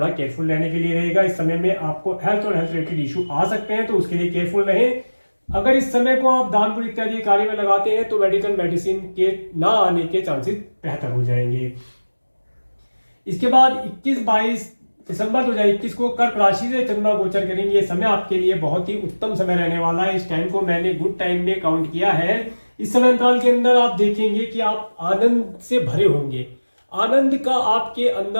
केयरफुल रहने के लिए रहेगा। इस समय में आपको हेल्थ और हेल्थ रिलेटेड इशू आ सकते हैं, तो उसके लिए केयरफुल रहें। अगर इस समय को आप दान पुण्य इत्यादि कार्य में लगाते हैं तो मेडिसिन के ना आने के चांसेस बेहतर हो जाएंगे। इसके बाद 21-22 दिसंबर 2021 को कर्क राशि से चंद्रमा गोचर करेंगे। समय आपके लिए बहुत ही उत्तम समय रहने वाला है। इस टाइम को मैंने गुड टाइम में काउंट किया है। इस समय अंतराल के अंदर आप देखेंगे कि आप आनंद से भरे होंगे, आनंद का आपके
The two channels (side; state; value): both; inverted; correlation -1.00